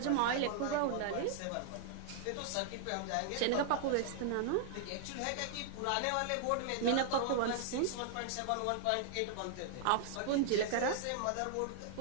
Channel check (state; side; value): different; both; correlation -0.01